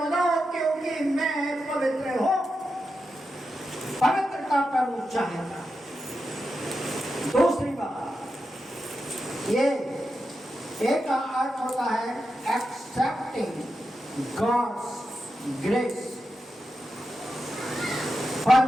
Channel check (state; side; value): normal; both; correlation 0.89